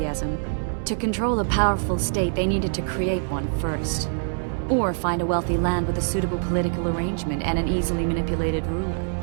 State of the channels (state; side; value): silent; left; 62 dB below the other